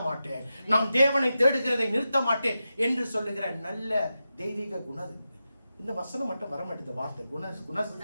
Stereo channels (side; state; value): both; inverted; correlation -0.91